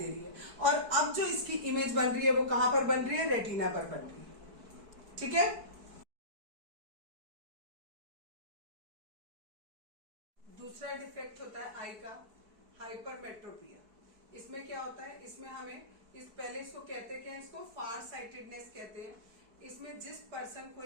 रही है। और अब जो इसकी इमेज बन रही है वो कहां पर बन रही है, रेटिना पर बन रही है, ठीक है। दूसरा डिफेक्ट होता है आई का हाइपरमेट्रोपिया। इसमें क्या होता है, इसमें हमें पहले इसको कहते हैं, इसको फार साइटेडनेस कहते हैं। इसमें जिस पर्सन को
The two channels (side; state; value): left; late; 4.6 ms